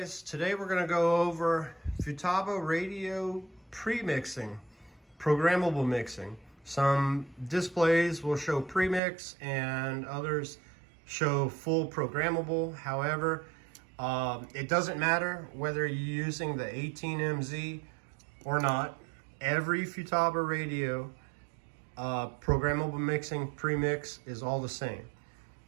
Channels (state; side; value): drops out; left; at 9.0 s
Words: today we're going to go over Futaba radio pre-mixing, programmable mixing. Some displays will show premix and others show full programmable. However, it doesn't matter whether you're using the 18MZ or not. Every Futaba radio programmable mixing premix is all the same.